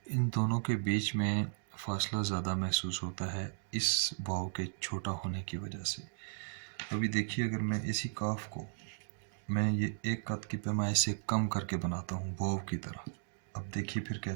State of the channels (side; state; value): left; silent; digital silence